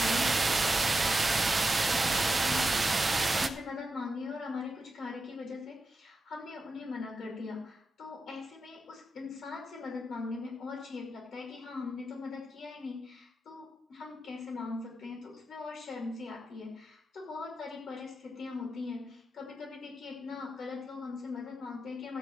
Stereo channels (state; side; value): normal; both; correlation 0.88